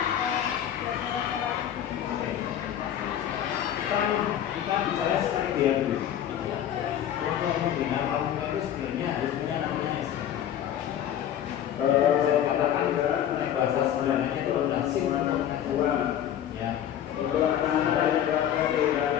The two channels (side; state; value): right; quieter; 10.5 dB